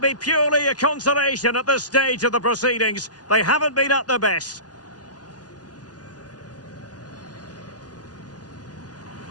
be purely a consolation at this stage of the proceedings? They haven't been at their best.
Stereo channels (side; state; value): right; late; 0.69 ms